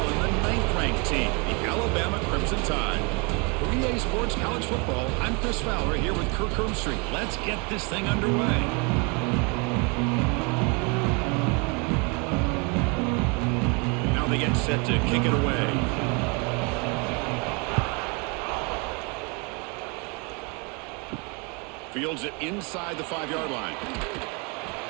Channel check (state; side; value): quieter; left; 31.9 dB